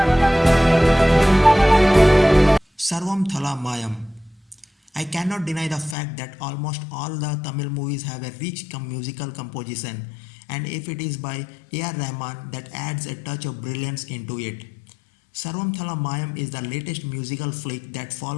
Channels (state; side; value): drops out; right; at 6.0 s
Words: Servanthala Mayam. I cannot deny the fact that almost all the Tamil movies have a rich musical composition, and if it is by A.R. Rahman, that adds a touch of brilliance into it. Servanthala Mayam is the latest musical flick that